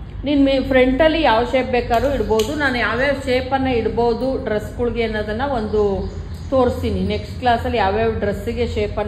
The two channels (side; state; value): both; identical; correlation 1.00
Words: ನೀನು ಫ್ರಂಟಲ್ಲಿ ಯಾವ ಶೇಪ್ ಬೇಕಾದ್ರೂ ಇಡ್ಬೋದು. ನಾನು ಯಾವ್ಯಾವ ಶೇಪನ್ನು ಇಡ್ಬೋದು ಡ್ರೆಸ್ಗಳಿಗೆ ಅನ್ನೋದನ್ನು ಒಂದು ತೋರಿಸ್ತೀನಿ. ನೆಕ್ಸ್ಟ್ ಕ್ಲಾಸಲ್ಲಿ ಯಾವ್ಯಾವ ಡ್ರೆಸ್ಸಿಗೆ